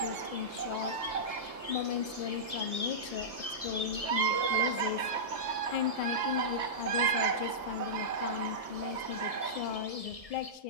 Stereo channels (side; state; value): right; late; 1.7 ms